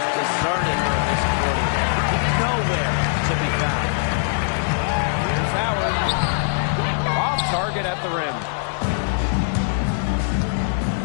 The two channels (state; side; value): silent; right; digital silence